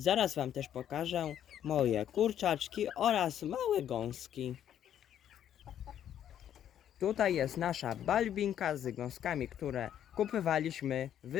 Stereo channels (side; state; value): right; quieter; 10.2 dB